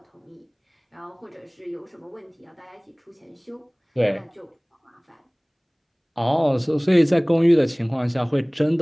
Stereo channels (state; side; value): identical; both; correlation 1.00